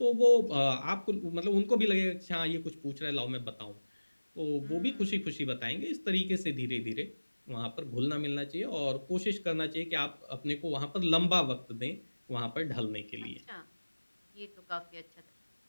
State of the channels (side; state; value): both; inverted; correlation -1.00